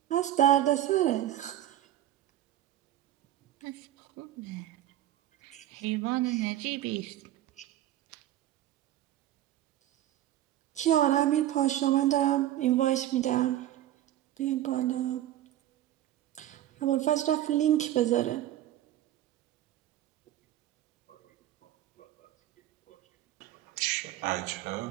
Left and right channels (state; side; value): quieter; left; 13.1 dB